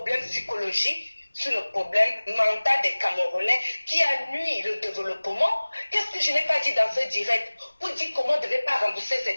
psychologique sur le problème mental des Camerounais qui a nuit le développement. Qu'est-ce que je n'ai pas dit dans ce direct pour dire comment on ne devait pas rembourser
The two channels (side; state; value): both; inverted; correlation -1.00